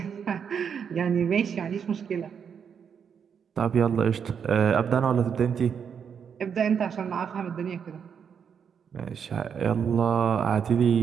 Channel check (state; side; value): quieter; left; 7.2 dB